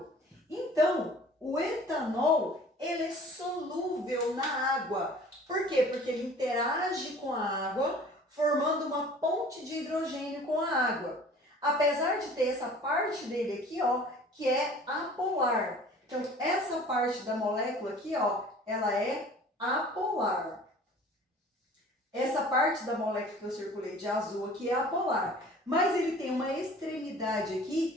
Então, o etanol, ele é solúvel na água. Por quê? Porque ele interage com a água, formando uma ponte de hidrogênio com a água. Apesar de ter essa parte dele aqui, ó, que é apolar. Então, essa parte da molécula aqui, ó, ela é apolar. Essa parte da molécula que eu circulei de azul aqui é apolar. Mas ele tem uma extremidade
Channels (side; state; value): both; normal; correlation 0.47